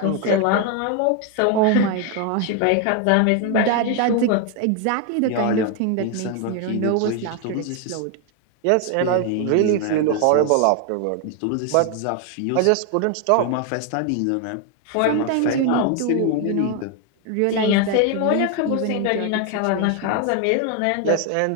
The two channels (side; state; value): both; different; correlation 0.01